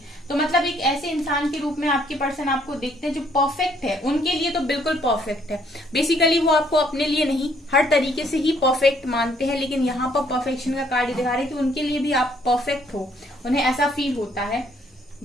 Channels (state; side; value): normal; both; correlation 0.66